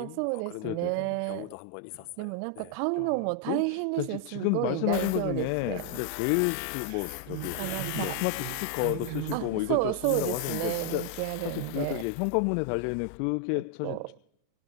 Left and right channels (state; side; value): different; both; correlation 0.00